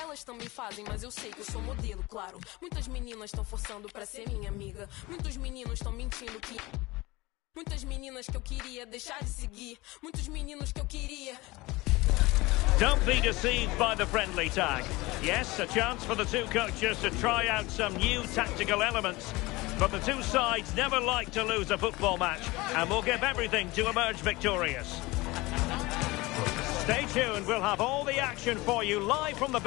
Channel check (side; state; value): right; quieter; 21.5 dB